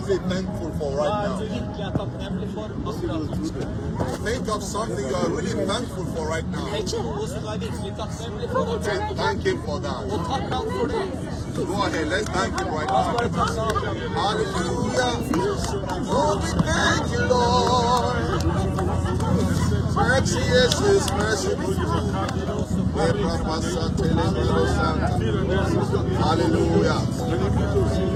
thankful for right now? Think of something you are really thankful for right now. Thank him for that. Go ahead, let's thank him right now. Hallelujah. Oh, we thank you, Lord. Mercy is his mercy. Hallelujah.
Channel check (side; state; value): both; identical; correlation 1.00